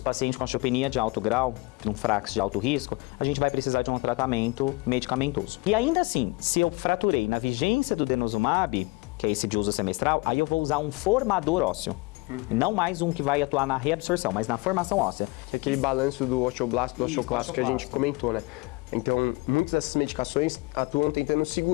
pacientes com osteopenia de alto grau, um FRAX de alto risco, a gente vai precisar de um tratamento medicamentoso. E ainda assim, se eu fraturei na vigência do denosumab, que é esse de uso semestral, aí eu vou usar um formador ósseo. Não mais um que vai atuar na reabsorção, mas na formação óssea. Que é aquele balanço do osteoblasto, do Isso, osteoclasto que a gente osteoclasto. comentou, né? Então, muitas dessas medicações atuam tentando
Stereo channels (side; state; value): right; quieter; 25.2 dB